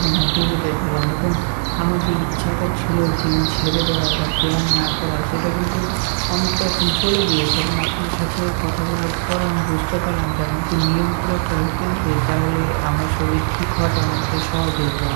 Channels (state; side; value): silent; left; 66 dB below the other